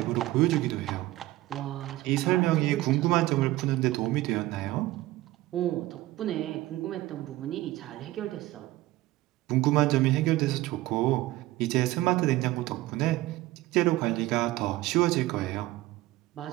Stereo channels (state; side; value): quieter; left; 17.1 dB